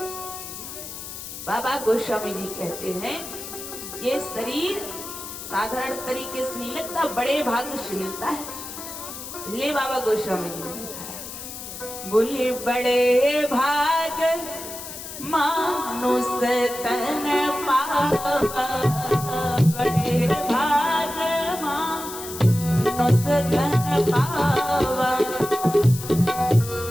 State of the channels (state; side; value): noise; left; hiss, 10 dB below the sound